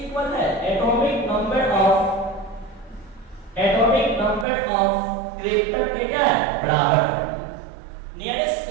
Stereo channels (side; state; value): left; drops out; at 4.5 s